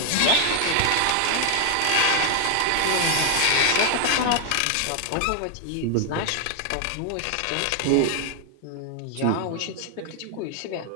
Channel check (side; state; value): both; different; correlation 0.00